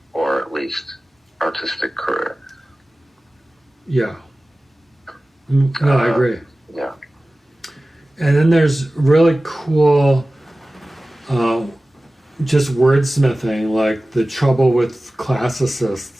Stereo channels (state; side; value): normal; both; correlation 0.97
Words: or at least artistic career. Yeah. No, I agree. Yeah. And then there's really cool just wordsmithing, like the trouble with